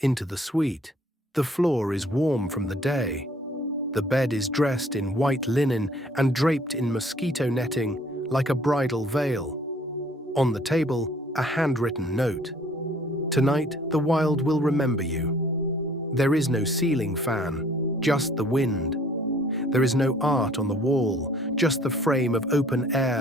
into the suite. The floor is warm from the day. The bed is dressed in white linen and draped in mosquito netting like a bridal veil. On the table, a handwritten note. Tonight, the wild will remember you. There is no ceiling fan, just the wind. There is no art on the wall, just the frame of open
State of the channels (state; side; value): normal; both; correlation 0.57